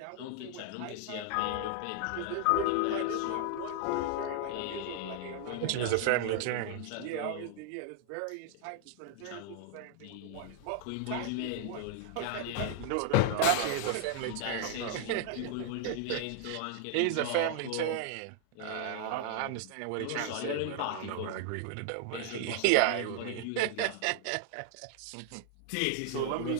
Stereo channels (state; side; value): different; both; correlation 0.00